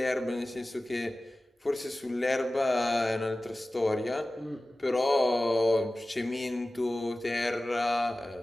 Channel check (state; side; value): normal; both; correlation 0.96